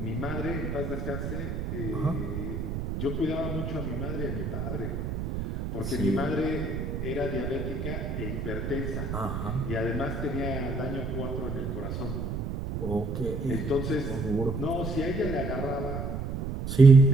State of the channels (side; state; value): right; noise; rumble, 4 dB below the sound